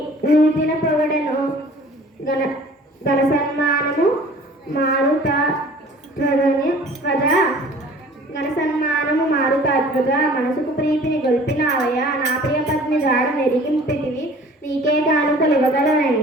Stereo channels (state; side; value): normal; both; correlation 0.48